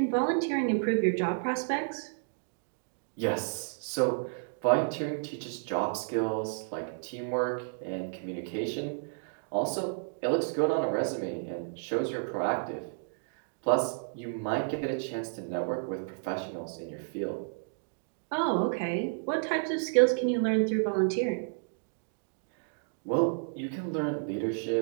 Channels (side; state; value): left; silent; digital silence